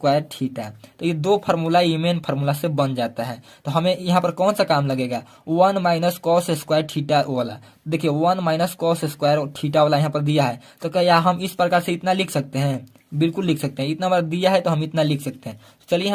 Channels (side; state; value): both; identical; correlation 1.00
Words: थीटा। तो ये दो फार्मूला ये मेन फार्मूला से बन जाता है। तो हमें यहाँ पर कौन सा काम लगेगा, 1 माइनस कॉस स्क्वायर थीटा वाला। देखिए 1 माइनस कॉस स्क्वायर थीटा वाला यहाँ पर दिया है, तो क्या हम इस प्रकार से इतना लिख सकते हैं, बिल्कुल लिख सकते हैं। इतना बार दिया है तो हम इतना लिख सकते हैं। चलिए